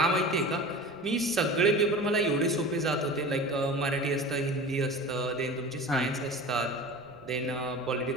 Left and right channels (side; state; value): right; noise; rumble, 25 dB below the sound